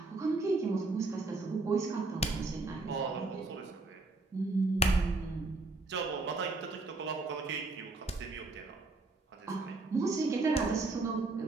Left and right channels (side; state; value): left; quieter; 3.3 dB